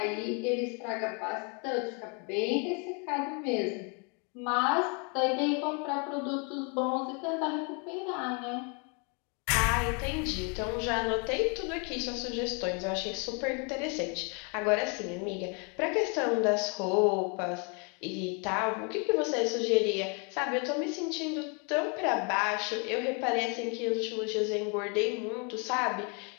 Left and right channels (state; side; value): quieter; right; 35.1 dB